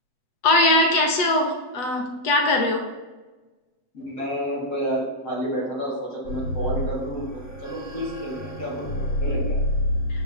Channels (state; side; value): late; right; 8.0 ms